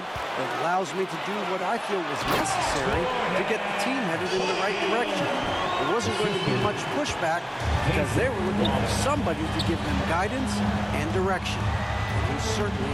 that allows me to do what I feel was necessary to get the team headed in the right direction." There wasn't going to be much pushback because they were looking for somebody to give them guidance and direction. He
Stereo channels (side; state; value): both; identical; correlation 1.00